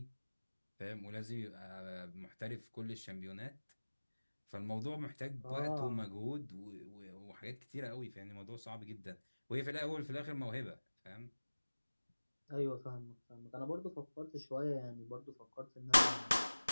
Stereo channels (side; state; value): both; inverted; correlation -1.00